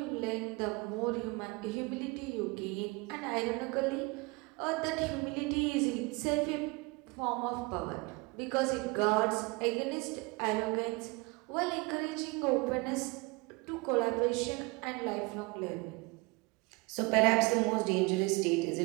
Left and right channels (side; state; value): left; quieter; 26.3 dB